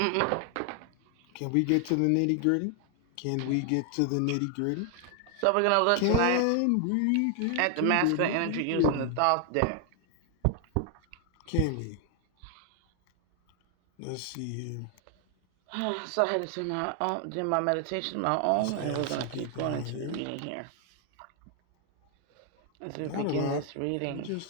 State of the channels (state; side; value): different; both; correlation 0.00